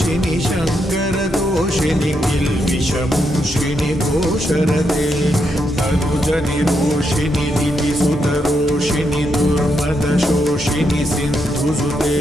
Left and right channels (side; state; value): both; normal; correlation 0.81